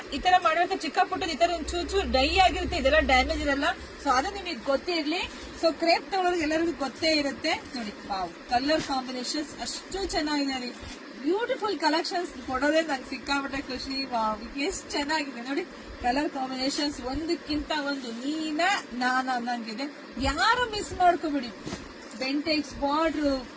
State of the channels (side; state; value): both; identical; correlation 1.00